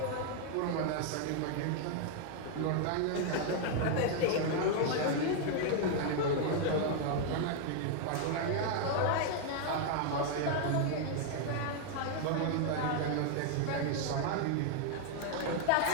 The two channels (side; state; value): both; different; correlation 0.00